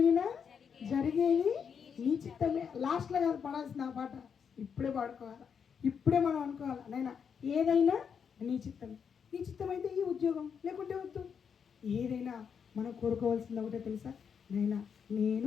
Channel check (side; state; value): right; quieter; 6.9 dB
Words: జరిగేది నీ చిత్తమే. లాస్ట్లో కాదు పాడాల్సిన ఆ పాట, ఇప్పుడే పాడుకోవాలి. ఇప్పుడే మనం అనుకోవాలి, నైనా ఏదైనా నీ చిత్తమే. నీ చిత్తం అయితే ఈ ఉద్యోగం, లేకుంటే వద్దు. ఏదైనా మనం కోరుకోవాల్సింది ఒకటే తెలుసా? నైనా